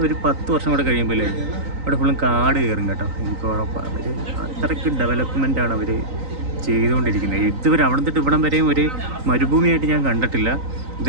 ഒരു 10 വർഷം കൂടെ കഴിയുമ്പോൾ അവിടെ ഫുള്ളും കാട് കയറും കേട്ടോ. എനിക്ക് ഉറപ്പാണ്. അവർ അത്രയ്ക്ക് ഡെവലപ്മെൻറ്റാണ് അവർ ചെയ്തുകൊണ്ടിരിക്കുന്നത്. ഇതുവരെ അവിടെ തൊട്ട് ഇവിടം വരെയും ഒരു മരുഭൂമിയായിട്ട് ഞാൻ കണ്ടിട്ടില്ല.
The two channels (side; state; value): left; late; 3.9 ms